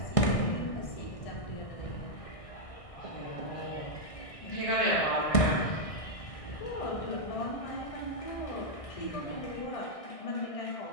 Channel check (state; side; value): late; right; 1.6 ms